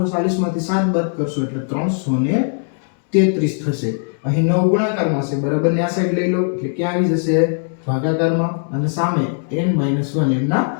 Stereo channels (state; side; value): silent; right; digital silence